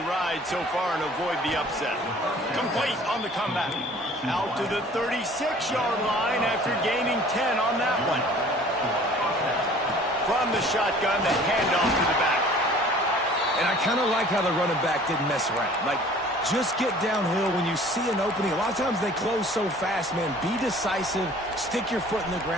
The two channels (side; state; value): both; normal; correlation 0.50